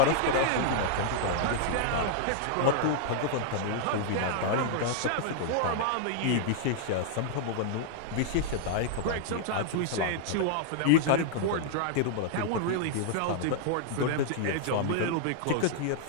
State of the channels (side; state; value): both; different; correlation -0.01